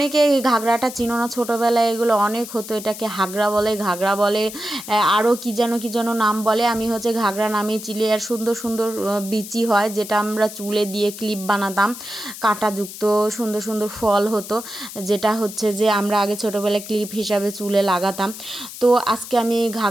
এই ঘাগরাটা চিনো না, ছোটোবেলায় এগুলো অনেক হতো, এটাকে হাগরা বলে, ঘাগরা বলে, আরও কী যেন নাম বলে। আমি হচ্ছে ঘাগরা নামে চিলি। আর সুন্দর সুন্দর বিচি হয়, যেটা আমরা চুলে দিয়ে ক্লিপ বানাতাম, কাঁটাযুক্ত সুন্দর সুন্দর ফল হতো, যেটা হচ্ছে যে আমরা আগে ছোটোবেলায় ক্লিপ হিসাবে চুলে লাগাতাম। তো আজকে আমি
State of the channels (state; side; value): noise; left; hiss, 12 dB below the sound